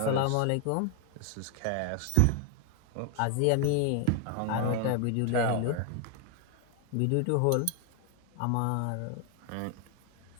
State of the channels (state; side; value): different; both; correlation 0.01